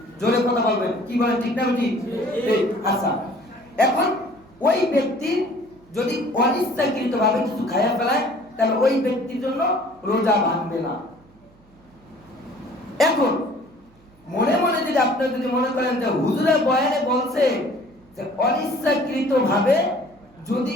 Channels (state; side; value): noise; right; hum, 29 dB below the sound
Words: জোরে কথা বলবেন, কি বলেন ঠিক না ঠিক? আচ্ছা, এখন ওই ব্যক্তি যদি অনিচ্ছাকৃতভাবে কিছু খাইয়া ফেলায় তাহলে ওই ব্যক্তির জন্য রোজা ভাঙবে না। এখন মনে মনে যদি আপনি যদি মনে করেন যে হুজুরের বয়ানে বলছে যে অনিচ্ছাকৃতভাবে যদি